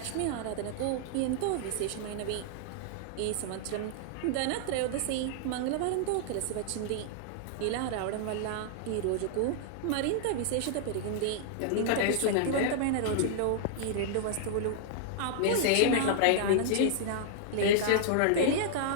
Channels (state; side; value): different; both; correlation -0.01